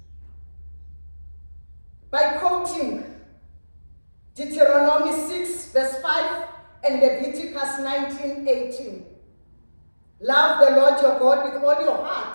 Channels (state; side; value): inverted; both; correlation -1.00